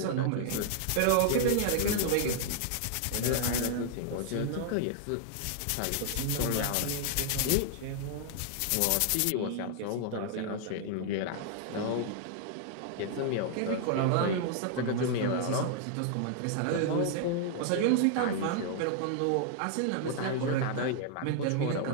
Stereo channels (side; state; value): both; different; correlation 0.00